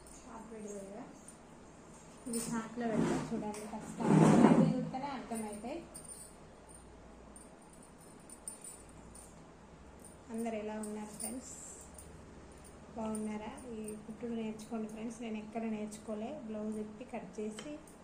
short video కదా, ఇది షార్ట్లో పెడతా చూడండి. ఖచ్చితంగా చూస్తేనే అర్థమవుతాయి. అందరు ఎలా ఉన్నారు ఫ్రెండ్స్? బాగున్నారా? ఈ కుట్టుడు నేర్చుకోండి ఫ్రెండ్స్. నేను ఎక్కడ నేర్చుకోలే. బ్లౌజ్ ఇప్పి కట్ చేసి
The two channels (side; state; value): both; identical; correlation 1.00